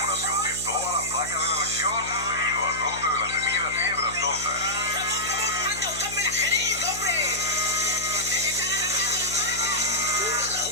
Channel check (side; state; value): left; noise; hum, 14 dB below the sound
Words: de todas las vacas de la región debido a brote de la temida fiebre aftosa. Ramón, anda a buscarme la jeringa, hombre. ¡Se están arrancando las vacas! ¡Puta, la